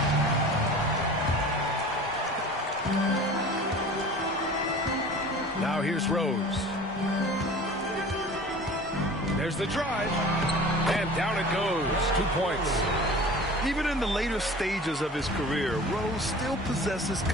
Now here's Rose. There's the drive. And down it goes. 2 points. Even in the later stages of his career, Rose still possesses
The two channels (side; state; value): both; normal; correlation 0.41